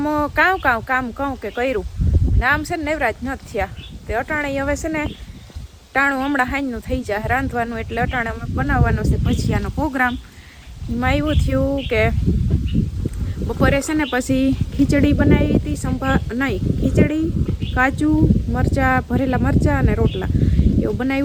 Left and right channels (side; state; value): both; identical; correlation 1.00